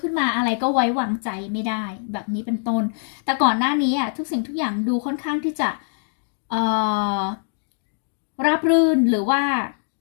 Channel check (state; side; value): silent; right; digital silence